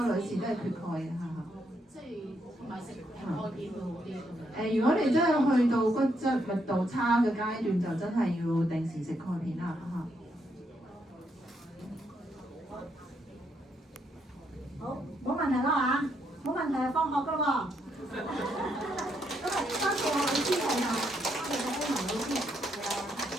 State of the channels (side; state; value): both; normal; correlation 0.76